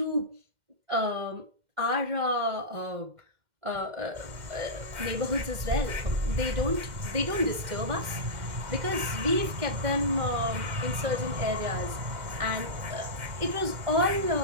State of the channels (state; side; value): late; left; 2.1 ms